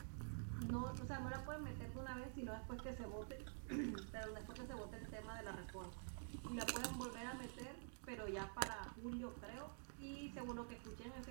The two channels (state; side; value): silent; left; digital silence